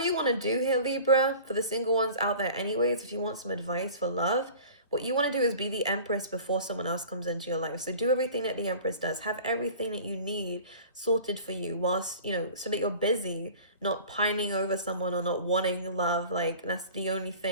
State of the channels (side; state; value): both; inverted; correlation -0.42